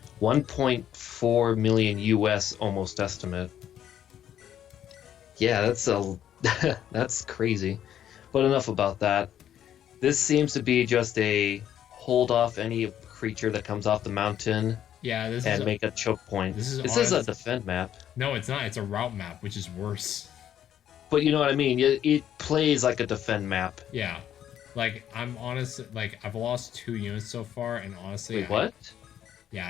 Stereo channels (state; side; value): quieter; right; 10.4 dB